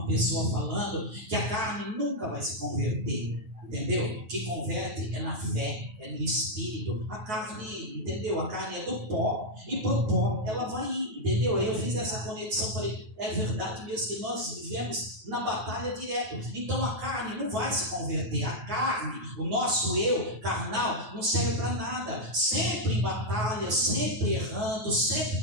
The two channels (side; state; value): left; late; 9.4 ms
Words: pessoa falando que a carne nunca vai se converter. Entendeu? Que converte é na fé, é no espírito. A carne, entendeu? A carne é do pó e pro pó ela vai ir, entendeu? Aí eu fiz essa conexão, falei, é verdade mesmo que nós vivemos na batalha direto. Então a carne não vai se converter. A carne, o nosso eu carnal, não serve para nada. Sempre em batalha, sempre errando, sempre